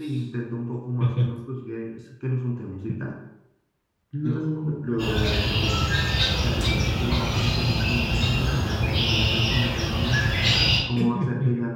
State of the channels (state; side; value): identical; both; correlation 1.00